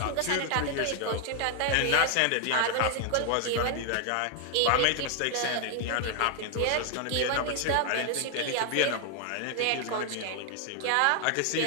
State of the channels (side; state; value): both; different; correlation 0.00